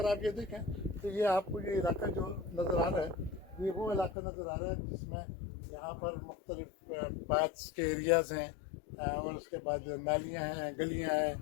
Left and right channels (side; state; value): right; drops out; at 4.2 s